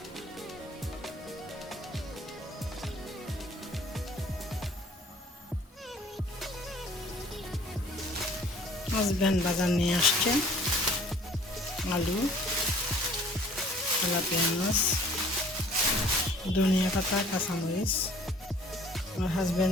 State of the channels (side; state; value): both; normal; correlation 0.53